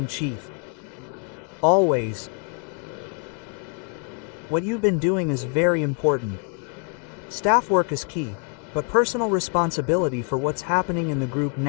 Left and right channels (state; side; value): quieter; right; 39.1 dB